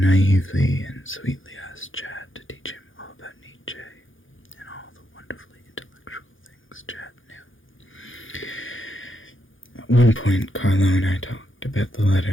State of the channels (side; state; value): right; late; 0.58 ms